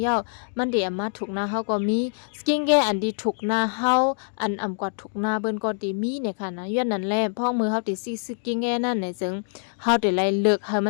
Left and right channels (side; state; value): right; silent; 59 dB below the other